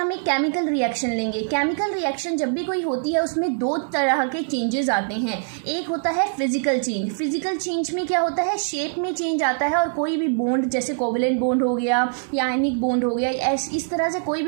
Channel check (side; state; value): left; silent; 63 dB below the other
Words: एक केमिकल रिएक्शन लेंगे. केमिकल रिएक्शन जब भी कोई होती है उसमें दो तरह के चेंजेस आते हैं. एक होता है फिजिकल चेंज. फिजिकल चेंज में क्या होता है, शेप में चेंज आता है और कोई भी बॉन्ड जैसे कोवेलेंट बॉन्ड हो गया या आयनिक बॉन्ड हो गया, इस तरह से कोई